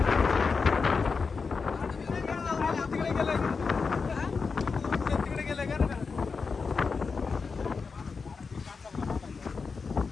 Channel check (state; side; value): quieter; right; 4.9 dB